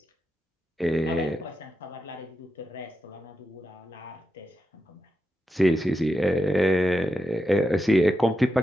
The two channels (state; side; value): normal; both; correlation 0.87